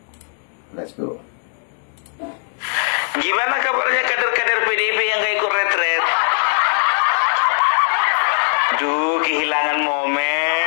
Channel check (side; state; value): right; silent; 66 dB below the other